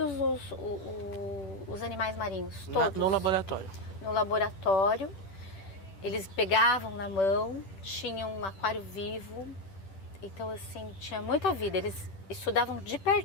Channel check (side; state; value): right; late; 10 ms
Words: os animais marinhos, todos. No laboratório? No laboratório. Eles pegavam na mão, tinham um aquário vivo, então assim, tinha muita vida. Eles estudavam de